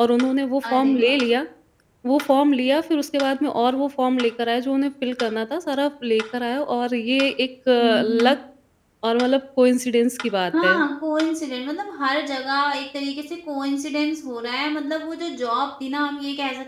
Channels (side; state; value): both; identical; correlation 1.00